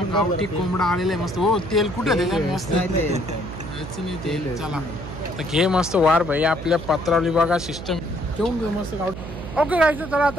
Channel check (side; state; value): right; noise; hum, 10 dB below the sound